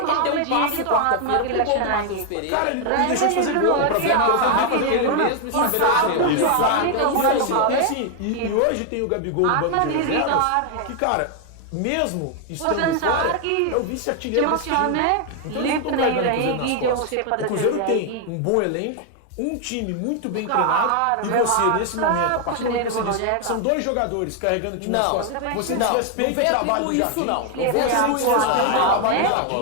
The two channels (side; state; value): both; different; correlation 0.00